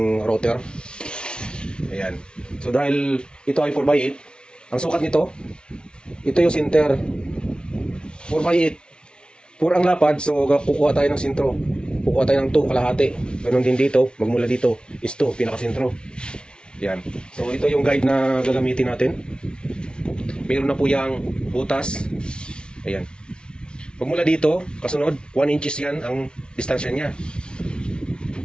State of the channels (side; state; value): right; late; 0.056 ms